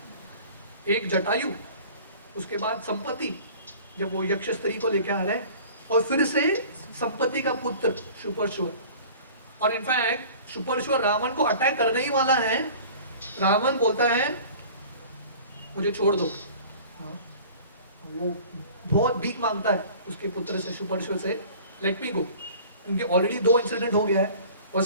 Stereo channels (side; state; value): both; inverted; correlation -0.45